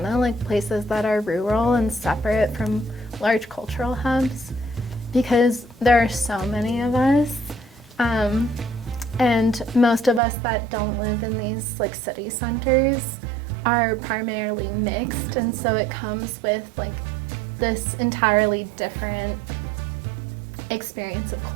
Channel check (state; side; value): drops out; left; at 10.2 s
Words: like places that are rural and separate from large cultural hubs, because there are so many of us. And most of us that don't live in these like city centers are primarily mixed, and so it comes with like this entirely different experience of